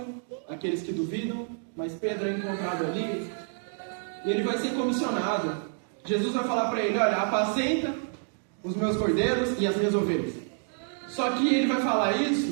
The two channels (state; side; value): silent; left; 59 dB below the other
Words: aqueles que duvidam, mas Pedro é encontrado ali e ele vai ser comissionado. Jesus vai falar para ele, olha, apacenta os meus cordeiros e as minhas ovelhas. Só que ele vai falar